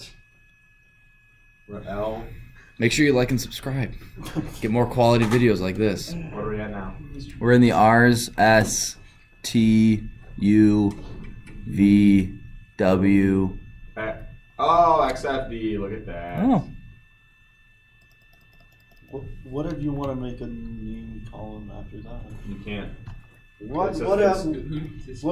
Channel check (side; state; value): both; identical; correlation 1.00